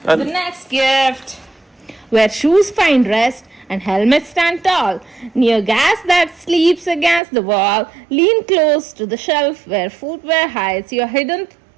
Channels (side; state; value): left; drops out; at 7.2 s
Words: the next gift, where shoes find rest and helmets stand tall, near gas that sleeps against the wall, lean close to the shelf where footwear hides your hidden